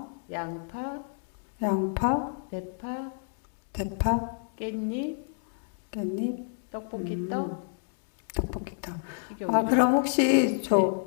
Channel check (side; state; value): right; silent; digital silence